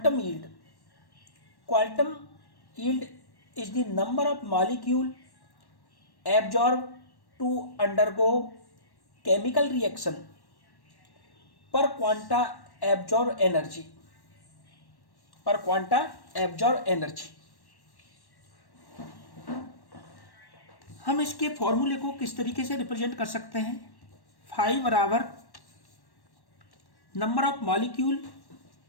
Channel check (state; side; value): late; right; 1.1 ms